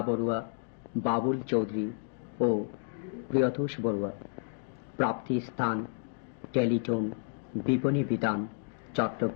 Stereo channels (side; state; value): right; silent; digital silence